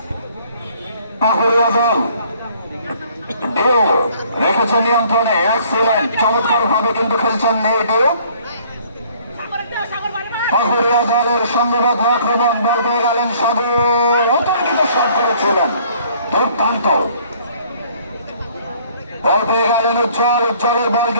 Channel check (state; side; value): inverted; both; correlation -0.58